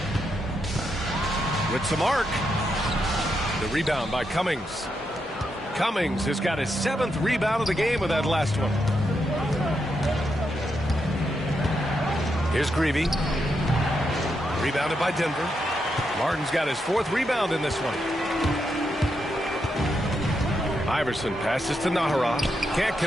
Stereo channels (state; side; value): normal; both; correlation 0.83